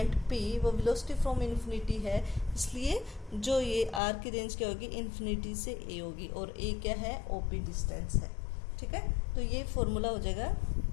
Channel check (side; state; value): right; drops out; at 4.0 s